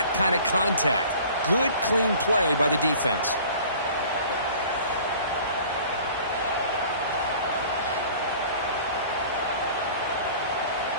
kind of contact. Good, clean play by the defense.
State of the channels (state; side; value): inverted; both; correlation -0.47